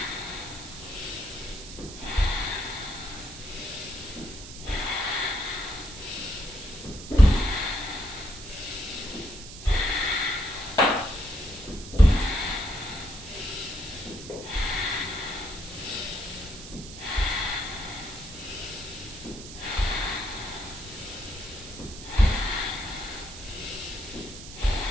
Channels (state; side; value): noise; right; hiss, 13 dB below the sound